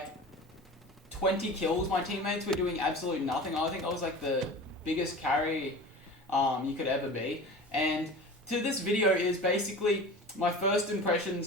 20 kills. My teammates were doing absolutely nothing. I think I was like the biggest carry you could ever be. And to this video is basically my first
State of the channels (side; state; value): both; normal; correlation 0.36